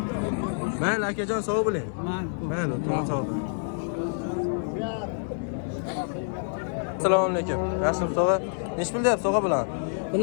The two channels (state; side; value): silent; right; 60 dB below the other